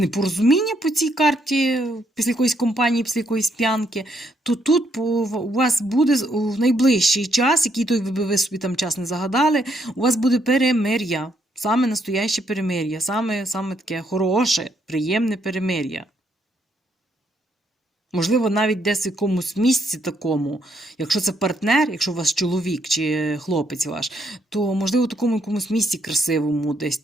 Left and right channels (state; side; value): normal; both; correlation 0.74